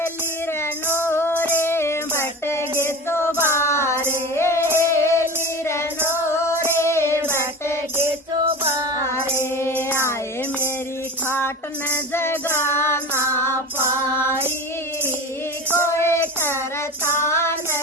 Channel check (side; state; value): both; normal; correlation 0.32